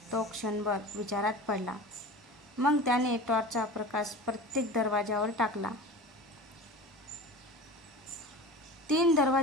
तो क्षणभर विचारात पडला. मग त्याने टॉर्चचा प्रकाश प्रत्येक दरवाजावर टाकला. 3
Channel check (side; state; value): both; normal; correlation 0.35